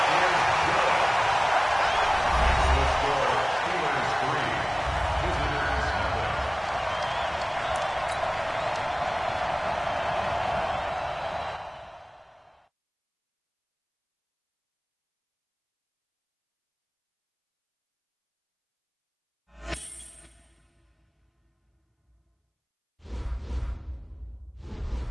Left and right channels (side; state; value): both; identical; correlation 1.00